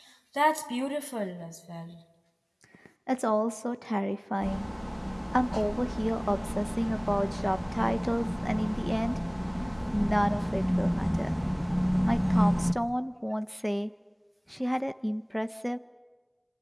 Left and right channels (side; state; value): both; identical; correlation 1.00